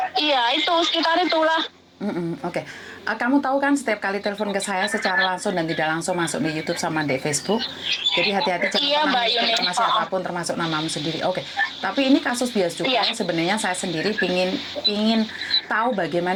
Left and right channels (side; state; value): both; identical; correlation 1.00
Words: Iya, itu sekitar itulah. Oke. Kamu tahu kan setiap kali telepon ke saya secara langsung dan tidak langsung masuk di YouTube sama di Facebook. Jadi hati-hati jangan pernah informasi apapun termasuk namamu sendiri. Oke. Tapi ini kasus bea cukai. Sebenarnya saya sendiri pingin tahu